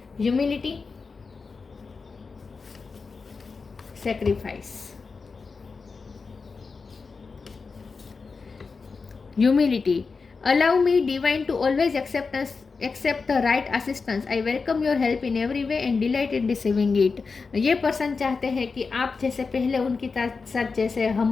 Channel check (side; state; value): right; quieter; 4.7 dB